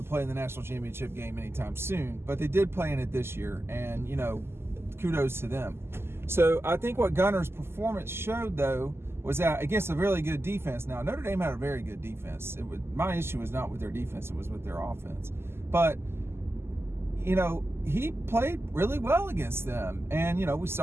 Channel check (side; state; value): left; late; 0.12 ms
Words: play in the national championship game anytime soon, but they did play in it this year, and, kudos to them. So I think what Gunnar's performance showed, though, was that against a really good defense. Now, Notre Dame had a very good defense. My issue was not with their defense, it was with their offense. But, he played really well against them. And, we